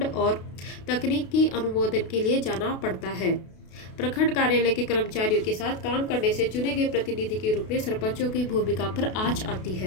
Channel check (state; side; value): late; right; 32 ms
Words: और तकनीकी अनुमोदन के लिए जाना पड़ता है। प्रखंड कार्यालय के कर्मचारियों के साथ काम करने से चुने गए प्रतिनिधि के रूप में सरपंचों की भूमिका पर आंच आती